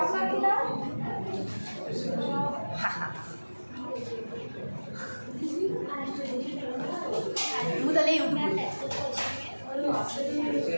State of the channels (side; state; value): both; inverted; correlation -1.00